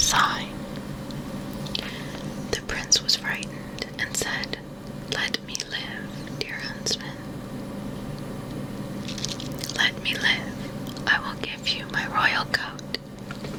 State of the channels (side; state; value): both; identical; correlation 1.00